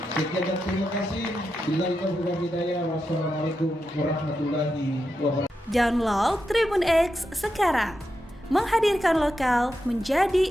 Sekian dan terima kasih. Billahi taufiq wal hidayah. Wassalamualaikum warahmatullahi wabarakatuh. Download Tribun X sekarang, menghadirkan lokal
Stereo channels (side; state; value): both; normal; correlation 0.87